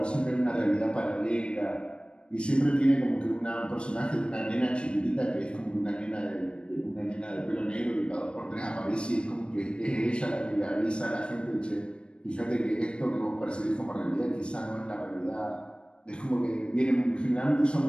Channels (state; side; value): late; right; 0.056 ms